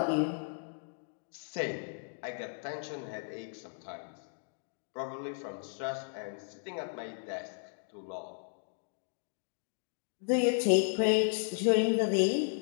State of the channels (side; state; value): right; silent; digital silence